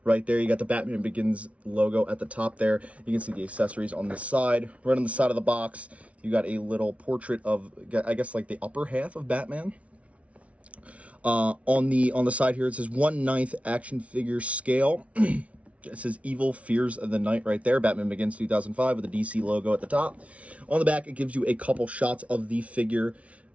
right there. You got the Batman Begins logo at the top there. You can see the accessories on the side. Right on the side of the box, you got a little portrait of, I guess, like the upper half of Batman. On the side here, it says 1/9 action figure scale. It says Evil Fears of the Night right there. Batman Begins 2005 with the DC logo at the top. On the back, it gives you a couple shots of the figure.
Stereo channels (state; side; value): late; left; 0.064 ms